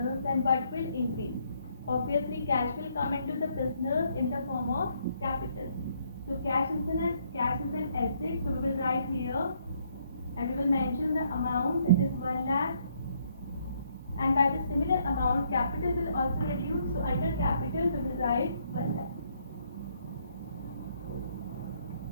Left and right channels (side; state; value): both; inverted; correlation -0.70